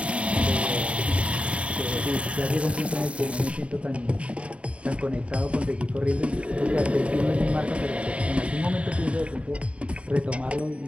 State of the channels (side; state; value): left; late; 0.062 ms